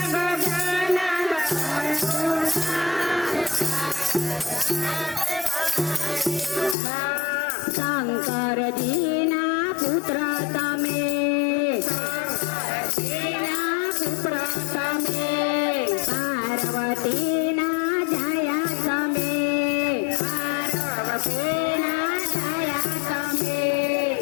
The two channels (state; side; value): drops out; right; at 6.8 s